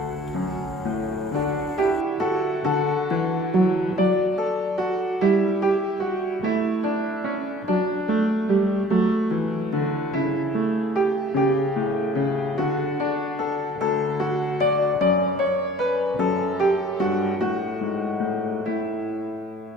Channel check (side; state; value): both; normal; correlation 0.52